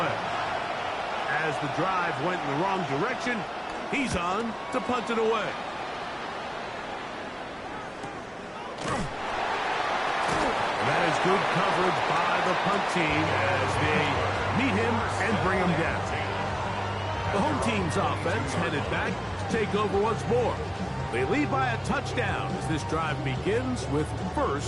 As the drive went in the wrong direction, he's on to punt it away. That is good coverage by the punt team as they meet him and bring him down. The home team's offense headed back to take over once more. They lead by a touchdown as this drive begins with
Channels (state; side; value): identical; both; correlation 1.00